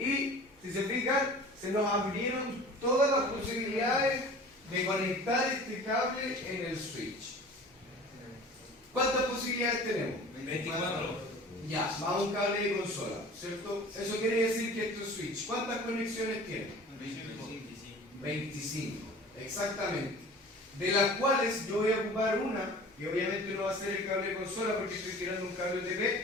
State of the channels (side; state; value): both; normal; correlation 0.42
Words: si se fijan, se nos abrieron todas las posibilidades de conectar este cable en el switch. ¿Cuántas posibilidades tenemos? 24. Ya, va un cable de consola, ¿cierto? Eso quiere decir que esto es switch. ¿Cuántas conexiones tiene? 25, exactamente. De las cuales yo voy a ocupar una, y obviamente no va a ser el cable de consola porque estoy tirando un cable